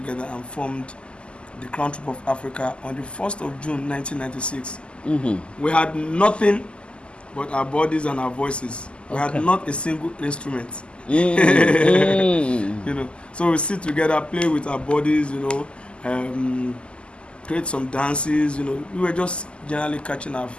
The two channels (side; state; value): right; late; 0.052 ms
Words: and formed the Crown Troupe of Africa on the 1st of June 1996. We had nothing but our bodies and our voices. We had Okay. not a single instrument. Mm. So we sit together, play with our bodies, create some dances. We were just generally catching our